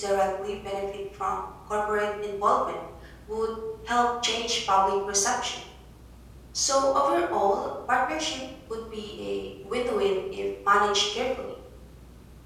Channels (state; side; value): identical; both; correlation 1.00